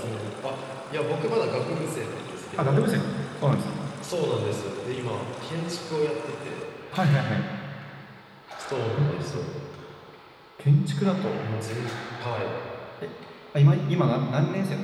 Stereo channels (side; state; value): both; identical; correlation 1.00